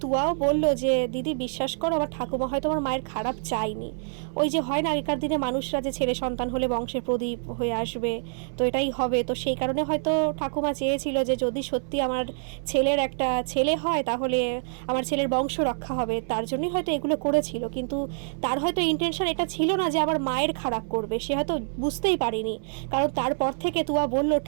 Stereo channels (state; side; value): silent; left; 61 dB below the other